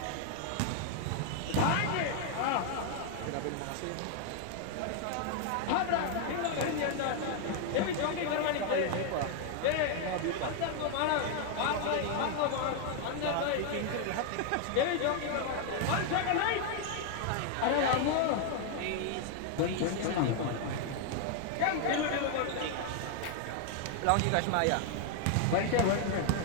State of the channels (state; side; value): different; both; correlation 0.00